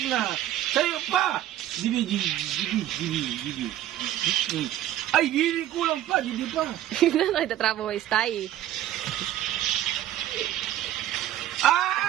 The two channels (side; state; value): left; quieter; 12.8 dB